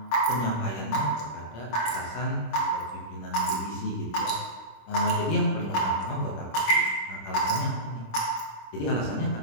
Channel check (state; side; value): late; right; 26 ms